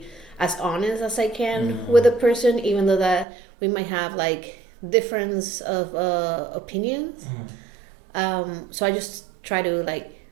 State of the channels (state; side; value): drops out; left; at 3.2 s